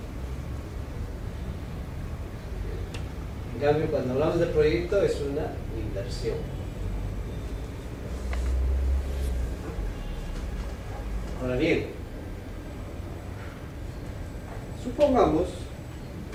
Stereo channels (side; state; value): both; identical; correlation 1.00